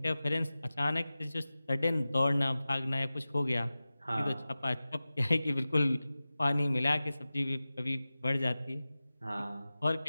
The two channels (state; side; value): inverted; both; correlation -0.96